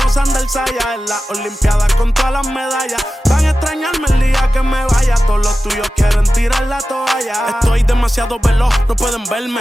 Sander Saya. En las olimpiadas con todas las medallas. Van a extrañarme el día que me vaya. Todos los tuyos quieren tirar la toalla. Estoy demasiado veloz, no pueden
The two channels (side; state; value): both; normal; correlation 0.94